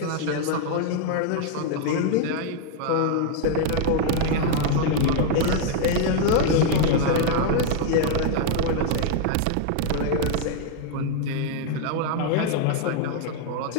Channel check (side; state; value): both; different; correlation 0.00